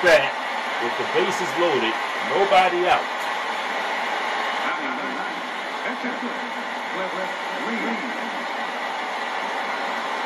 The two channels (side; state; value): both; identical; correlation 1.00